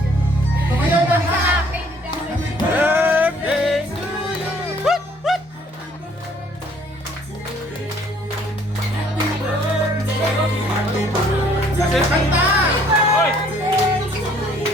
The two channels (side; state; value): both; normal; correlation 0.60